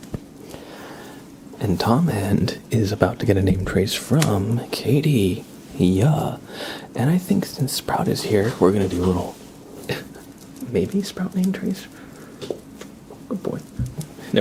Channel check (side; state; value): both; identical; correlation 1.00